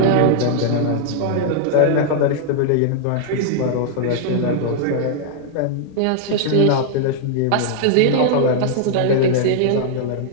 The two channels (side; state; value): both; different; correlation -0.01